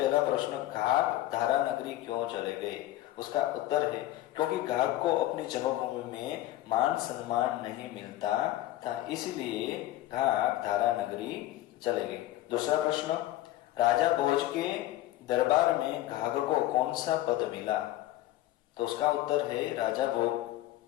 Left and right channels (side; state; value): right; quieter; 15.2 dB